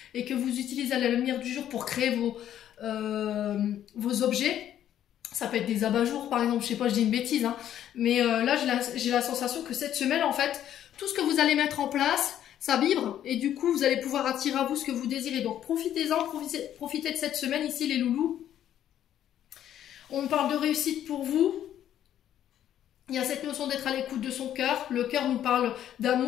et que vous utilisez la lumière du jour pour créer vos objets, ça peut être des abat-jours par exemple, je sais pas, je dis une bêtise, hein, mais là j'ai la sensation que cette semaine en fait, tout ce que vous allez mettre en place, ça vibre et du coup vous allez pouvoir attirer à vous ce que vous désirez. Donc profitez-en, profitez de cette semaine ici les loulous. On parle de réussite pour vous. Il y a cette notion d'être à l'écoute de son cœur. Le cœur nous parle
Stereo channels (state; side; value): quieter; right; 11.0 dB